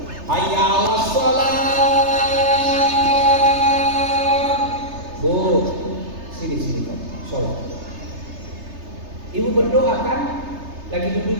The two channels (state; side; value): late; left; 3.3 ms